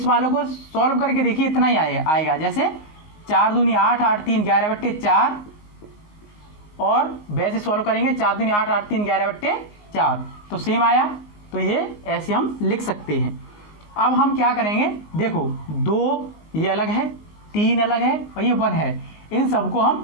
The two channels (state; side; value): late; right; 19 ms